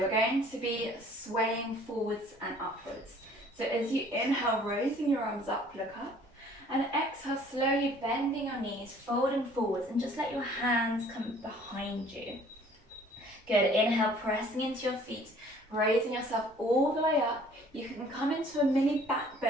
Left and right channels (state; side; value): normal; both; correlation 0.55